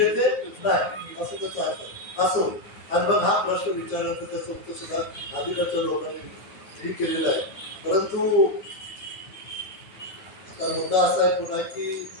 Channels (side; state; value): right; late; 9.5 ms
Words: ते नाही असं त्याचं अर्थ असो. आणि मग हा प्रश्न विचारल्यानंतर त्याचं उत्तर सुद्धा आधीकडच्या लोकांनी केलेलं आहे. परंतु आता मुद्दा असा आहे पुन्हा की